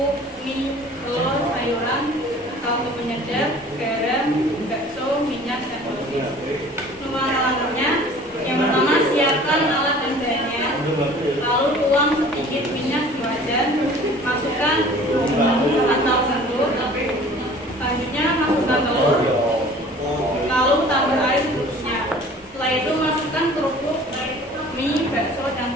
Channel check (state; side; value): normal; both; correlation 0.47